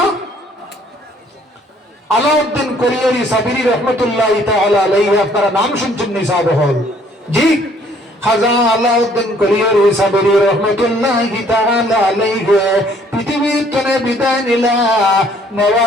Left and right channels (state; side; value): normal; both; correlation 0.61